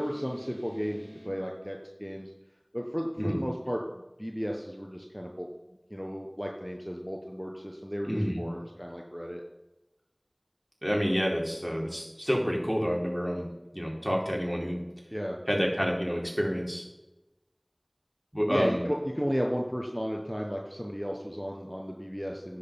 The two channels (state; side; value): identical; both; correlation 1.00